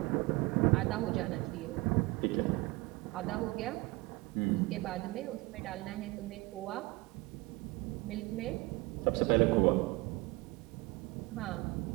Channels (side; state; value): left; quieter; 22.7 dB